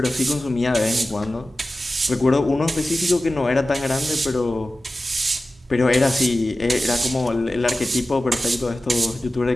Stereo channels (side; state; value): both; normal; correlation 0.95